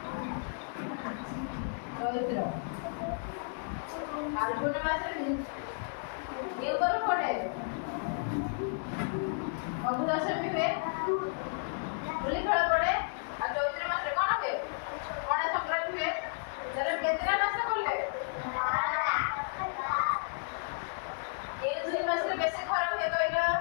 ଚୈତ୍ର। ଫାଲ୍ଗୁନ ମାସରେ କେଉଁ ପର୍ବ ପଡେ? ଫଗୁ ଦଶମୀ ହୁଏ। ହୋଲି ଖେଳ ପଡେ। ଆଉ ଚୈତ୍ର ମାସରେ କଣ ହୁଏ? ପଣା ସଂକ୍ରାନ୍ତି ହୁଏ। କେତେଟା ମାସ ପଡେ? କେଉଁ ଦୁଇ ମାସରେ ବେଶୀ ଖରା ହୁଏ କହିଲ?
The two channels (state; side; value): silent; right; 56 dB below the other